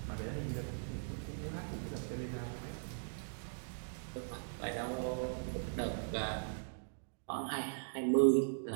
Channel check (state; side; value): silent; left; digital silence